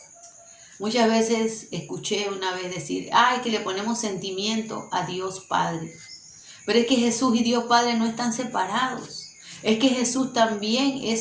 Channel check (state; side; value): identical; both; correlation 1.00